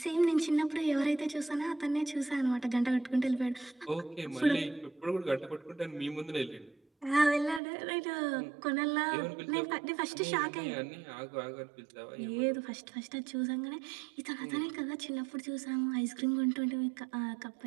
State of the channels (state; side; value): drops out; left; at 7.6 s